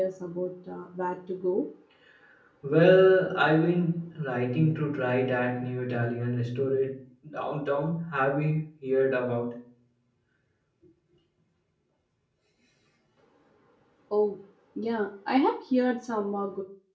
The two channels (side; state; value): both; identical; correlation 1.00